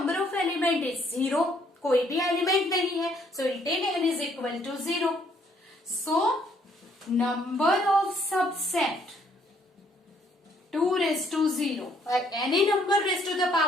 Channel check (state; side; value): normal; both; correlation 0.66